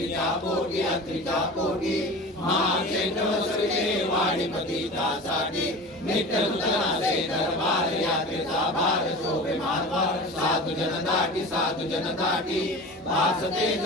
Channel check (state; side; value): normal; both; correlation 0.34